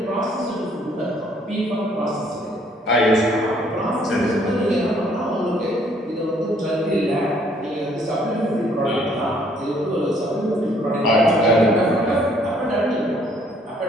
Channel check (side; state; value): both; normal; correlation 0.63